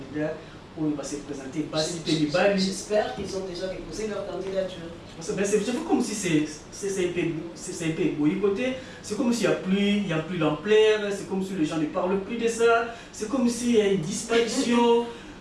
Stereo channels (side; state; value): both; identical; correlation 1.00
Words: où ils vont se présenter. J'espère qu'ils ont déjà déposé leur candidature. C'est comme si c'est un peu boycotté, c'est comme s'il n'y a plus l'ampleur, c'est comme si les gens ne parlent plus de ça, c'est comme s'il y a une disparition.